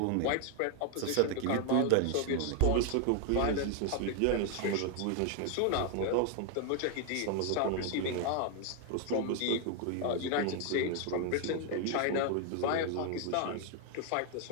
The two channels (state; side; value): different; both; correlation 0.00